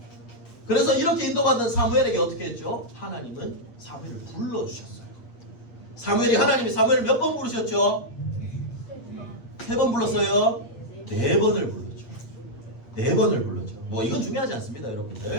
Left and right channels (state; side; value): late; right; 8.5 ms